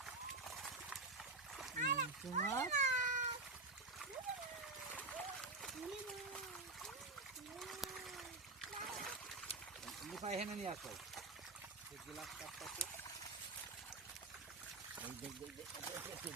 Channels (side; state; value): left; quieter; 3.4 dB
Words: নিপাই হেনে নিয়ে আসো গ্লাস কাপটাতে